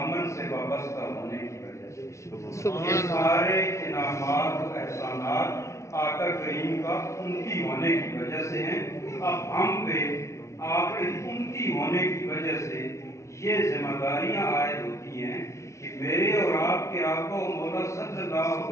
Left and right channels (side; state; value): right; late; 0.14 ms